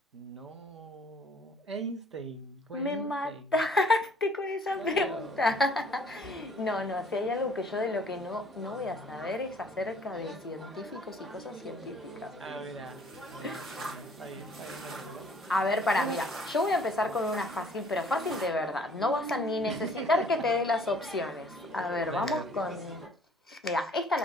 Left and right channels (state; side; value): normal; both; correlation 0.57